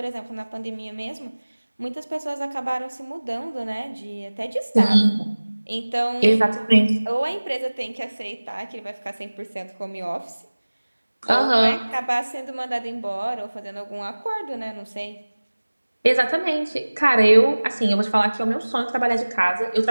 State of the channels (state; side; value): inverted; both; correlation -1.00